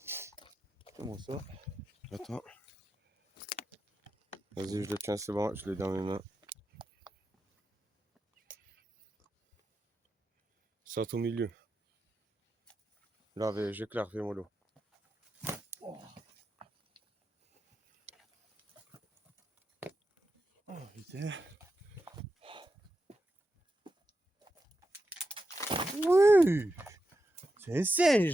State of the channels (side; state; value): both; normal; correlation 0.88